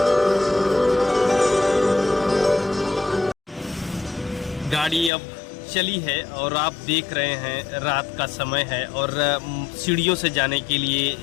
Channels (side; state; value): right; drops out; at 5.1 s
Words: गाड़ी अब चली है और आप देख रहे हैं रात का समय है और सीढ़ियों से जाने के लिए